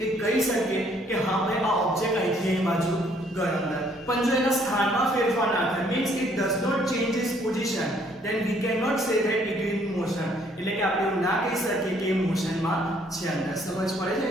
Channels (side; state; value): both; normal; correlation 0.64